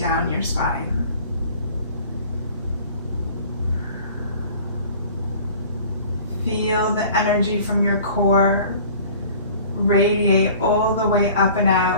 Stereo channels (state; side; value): inverted; both; correlation -0.46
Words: your spine. Feel the energy from your core radiate all the way up and